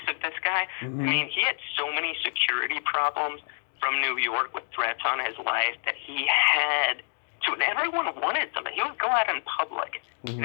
of this guy. I mean, he had so many security problems from New York with threats on his life that he had to, and everyone wanted something. He would go out in public,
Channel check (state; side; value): silent; right; digital silence